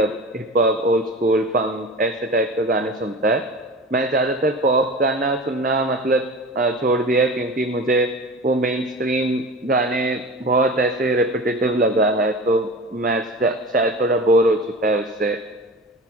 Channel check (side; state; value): both; normal; correlation 0.34